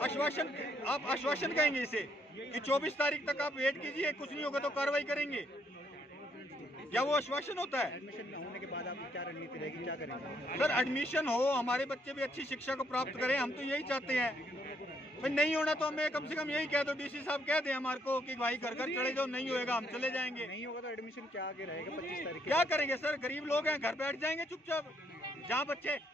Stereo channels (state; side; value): normal; both; correlation 0.72